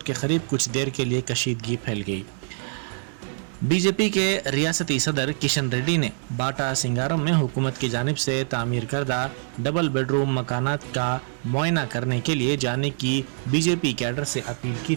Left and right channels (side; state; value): left; silent; digital silence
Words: के करीब कुछ देर के लिए कशीदगी फैल गई। बीजेपी के रियासती सदर किशन रेड्डी ने बाटा सिंगारम में हुकूमत की जानिब से तामीर करदा डबल बेडरूम मकानात का मुआयना करने के लिए जाने की बीजेपी कैडर से अपील की